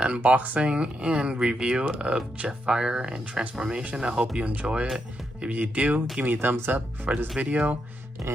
and review of Jetfire and transformation. I hope you enjoy it. If you do, give me a thumbs up for this video.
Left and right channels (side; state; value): both; normal; correlation 0.82